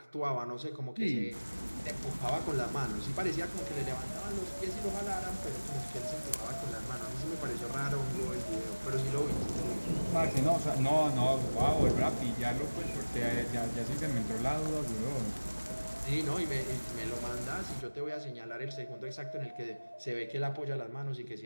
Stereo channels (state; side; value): inverted; both; correlation -1.00